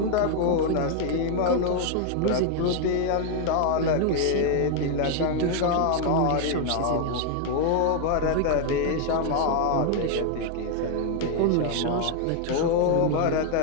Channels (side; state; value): both; different; correlation 0.00